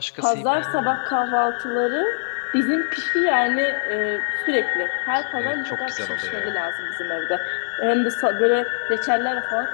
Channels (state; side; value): silent; right; digital silence